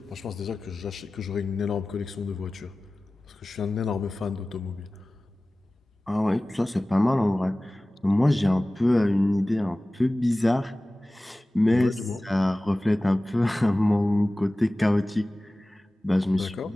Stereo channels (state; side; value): normal; both; correlation 0.97